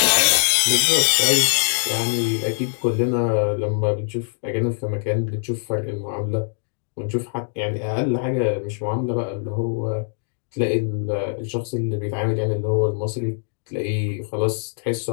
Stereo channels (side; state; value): right; silent; digital silence